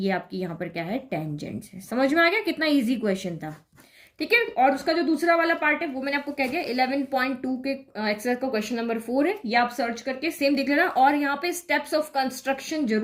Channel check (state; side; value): identical; both; correlation 1.00